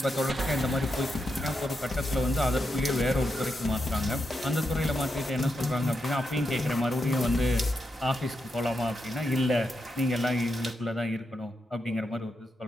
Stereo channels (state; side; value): normal; both; correlation 0.85